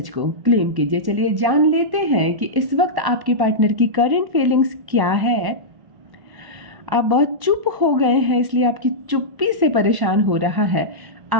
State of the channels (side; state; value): left; late; 1.0 ms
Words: को क्लेम कीजिए। चलिए जान लेते हैं कि इस वक्त आपके पार्टनर की करंट फीलिंग्स क्या है। आप बहुत चुप हो गए हैं, इसलिए आपकी चुप्पी से परेशान हो रहा है